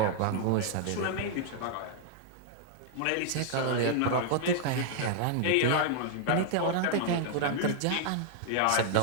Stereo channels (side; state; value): both; different; correlation -0.01